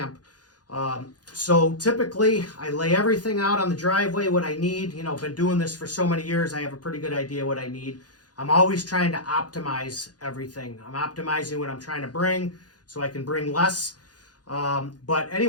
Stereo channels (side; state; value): right; late; 0.69 ms